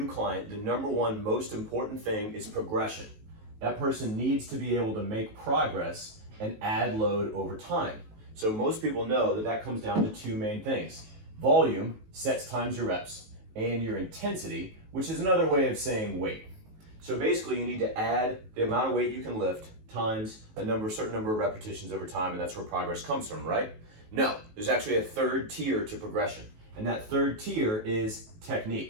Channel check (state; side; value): late; left; 19 ms